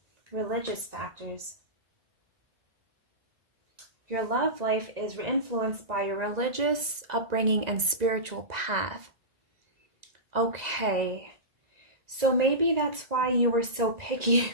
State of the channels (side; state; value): left; late; 2.0 ms